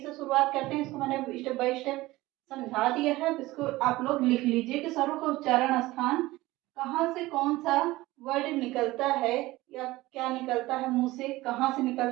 शुरुआत करते हैं। इसको मैंने स्टेप बाय स्टेप समझा दिया है। इसको आप लोग लिख लीजिए कि स्वरों का उच्चारण स्थान कहाँ से कौन सा वर्ड निकलता है या क्या निकलता है, मुंह से कहाँ से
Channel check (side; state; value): left; quieter; 18.7 dB